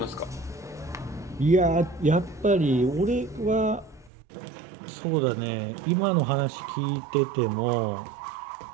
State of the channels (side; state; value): left; drops out; at 4.1 s